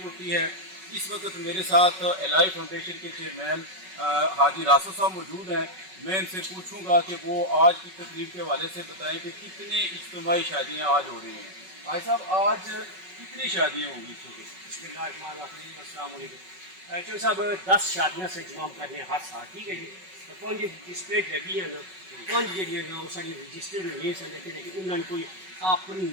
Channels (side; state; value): left; late; 5.3 ms